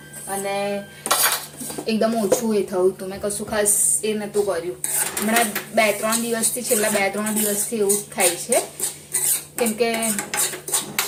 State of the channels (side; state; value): both; identical; correlation 1.00